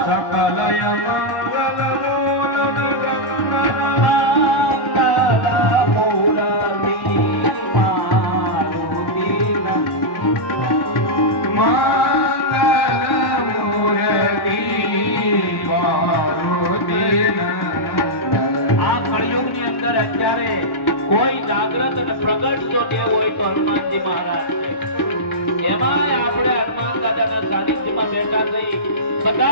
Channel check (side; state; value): right; late; 1.1 ms